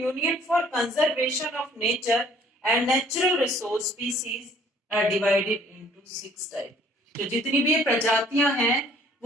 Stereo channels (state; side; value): normal; both; correlation 0.57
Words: for Conservation of Nature and Natural Resource, species are divided into 6 type. तो जितनी भी ये प्रजातियां हैं